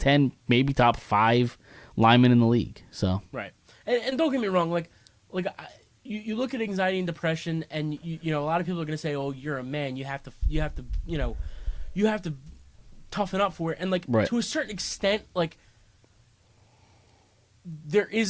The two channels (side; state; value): both; identical; correlation 1.00